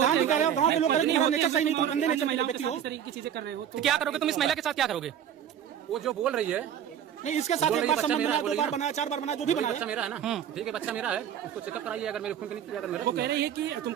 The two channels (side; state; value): left; quieter; 9.5 dB